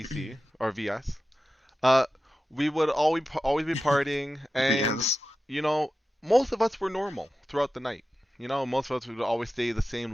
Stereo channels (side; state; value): both; normal; correlation 0.93